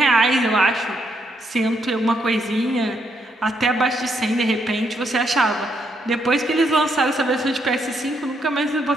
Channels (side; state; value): both; normal; correlation 0.76